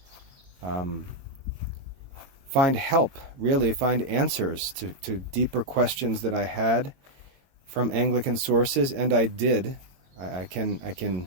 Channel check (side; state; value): left; late; 21 ms